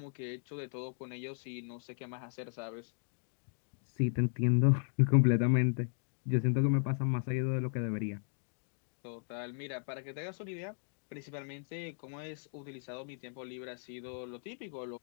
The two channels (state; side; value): silent; right; digital silence